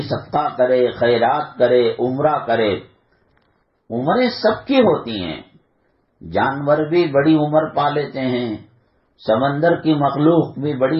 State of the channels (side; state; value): both; identical; correlation 1.00